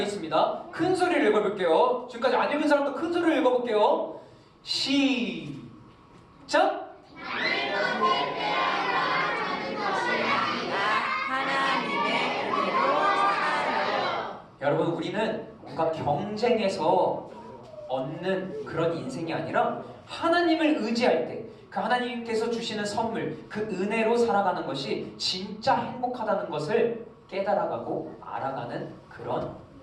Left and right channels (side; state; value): both; identical; correlation 1.00